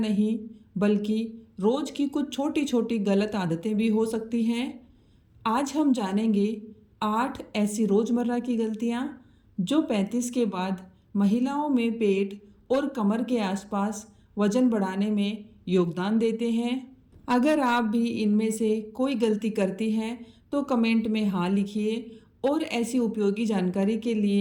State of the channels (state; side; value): identical; both; correlation 1.00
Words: बल्कि रोज़ की कुछ छोटी छोटी गलत आदतें भी हो सकती हैं। आज हम जानेंगे 8 ऐसी रोज़मर्रा की गलतियाँ जो 35 के बाद महिलाओं में पेट और कमर के आसपास वजन बढ़ाने में योगदान देते हैं। अगर आप भी इनमें से कोई गलती करती हैं तो कमेंट में हाँ लिखिए और ऐसी उपयोगी जानकारी के